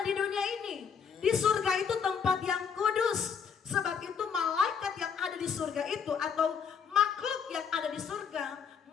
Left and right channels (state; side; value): quieter; right; 6.7 dB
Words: di dunia ini. Di surga itu tempat yang kudus. Sebab itu malaikat yang ada di surga itu atau makhluk yang ada di surga,